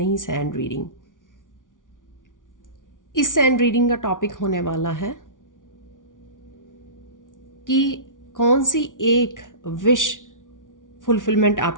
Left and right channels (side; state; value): right; late; 0.88 ms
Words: सैंड रीडिंग। इस सैंड रीडिंग का टॉपिक होने वाला है कि कौन सी एक विश फुलफिलमेंट